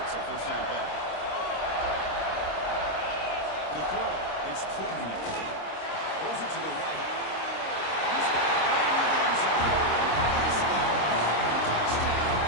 a first down play. The throw. It's Klubnik. Throws it to the right. He's got it right near the end zone. He scores. Touchdown,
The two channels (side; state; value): right; late; 26 ms